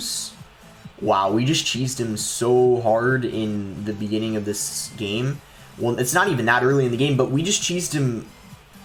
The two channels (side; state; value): both; identical; correlation 1.00